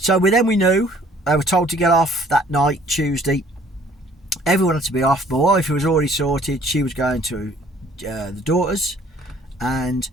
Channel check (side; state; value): both; normal; correlation 0.57